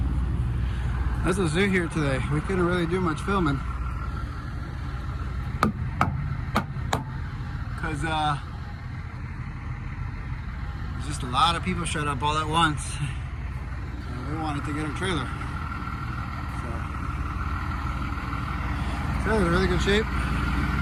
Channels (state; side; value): identical; both; correlation 1.00